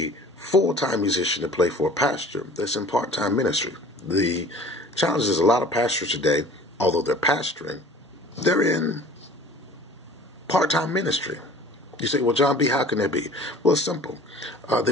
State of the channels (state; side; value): normal; both; correlation 0.45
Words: full-time musician to play for a pastor that's in part-time ministry. The challenge is a lot of pastors today, although they're pastoring, they're in part-time ministry. You say, well, John B., how can that be? Well, it's simple. They